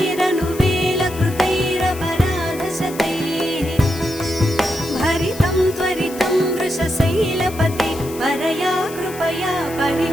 भरितं त्वरितं वृषशैलपते परया कृपया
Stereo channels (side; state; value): left; noise; hiss, 15 dB below the sound